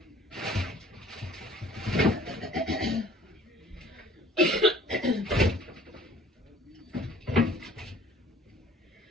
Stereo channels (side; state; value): both; normal; correlation 0.53